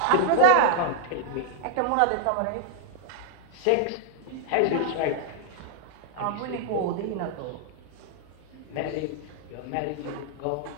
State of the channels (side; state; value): both; different; correlation 0.00